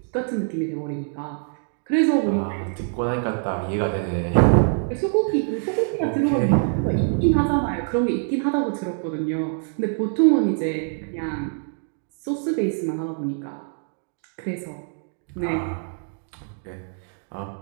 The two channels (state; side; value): silent; left; 62 dB below the other